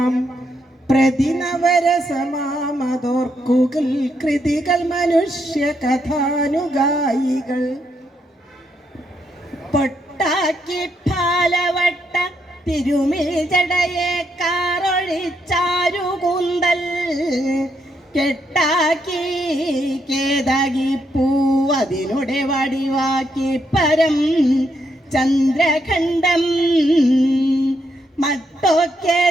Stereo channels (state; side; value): normal; both; correlation 0.78